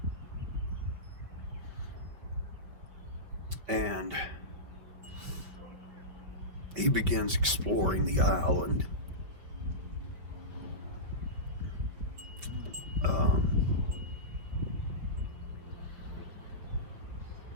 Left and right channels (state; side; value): late; left; 5.1 ms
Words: And he begins exploring the island.